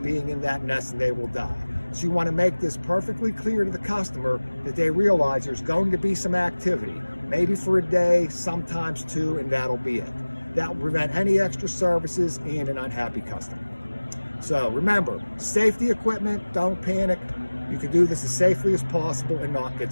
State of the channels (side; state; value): both; inverted; correlation -1.00